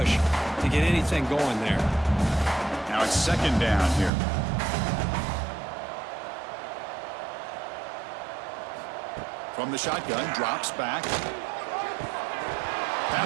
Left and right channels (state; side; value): drops out; left; at 4.1 s